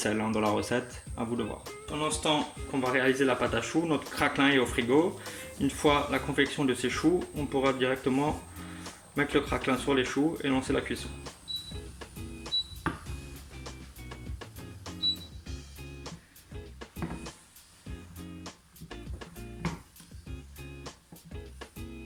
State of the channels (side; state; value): both; identical; correlation 1.00